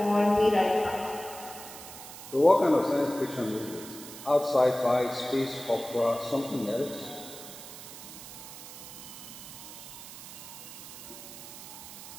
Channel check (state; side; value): noise; right; hiss, 13 dB below the sound